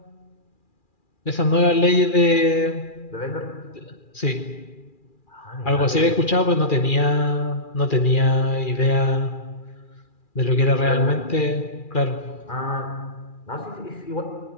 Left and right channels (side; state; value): right; late; 2.4 ms